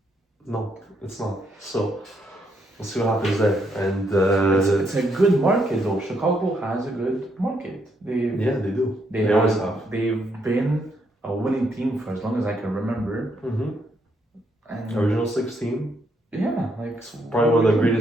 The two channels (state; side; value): normal; both; correlation 0.75